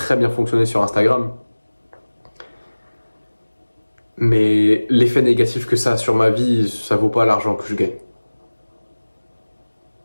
bien fonctionné sur Instagram, mais l'effet négatif que ça a sur ma vie, ça vaut pas l'argent que je gagne.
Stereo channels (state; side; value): inverted; both; correlation -1.00